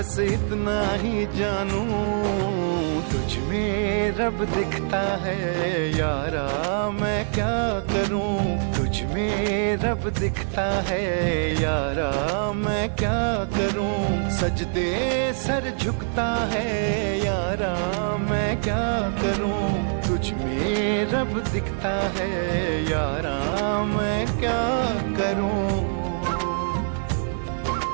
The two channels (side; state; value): left; silent; 62 dB below the other